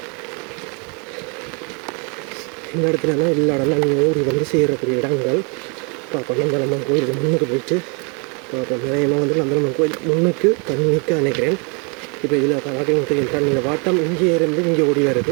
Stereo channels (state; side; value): quieter; left; 34.9 dB